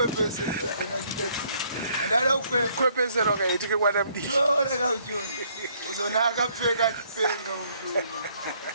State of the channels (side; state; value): both; inverted; correlation -0.66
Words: kana chiteti. Andada Kwepesera wakaitike kwana mdishi. ora kauchoni. Uzona akapfeka chipenga uchoni.